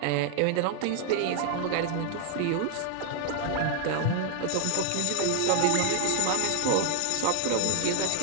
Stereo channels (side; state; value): both; different; correlation 0.00